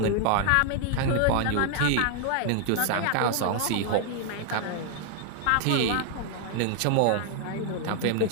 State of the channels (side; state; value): both; different; correlation 0.00